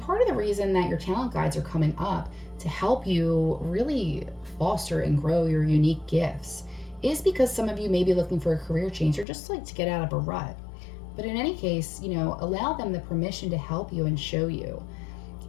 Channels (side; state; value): right; drops out; at 9.2 s